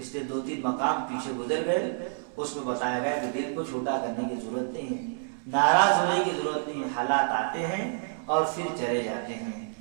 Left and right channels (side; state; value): left; silent; 59 dB below the other